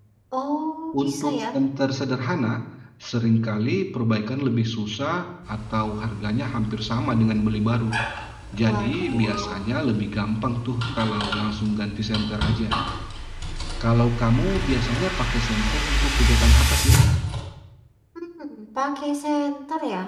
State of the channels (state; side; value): identical; both; correlation 1.00